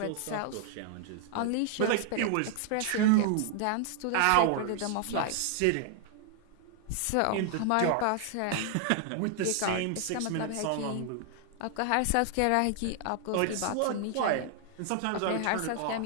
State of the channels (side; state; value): both; different; correlation 0.00